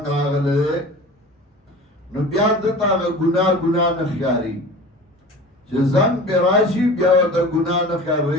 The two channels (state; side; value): normal; both; correlation 0.38